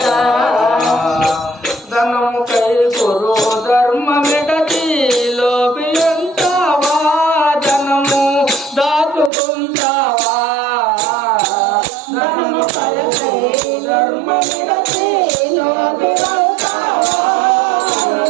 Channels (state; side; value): drops out; left; at 9.3 s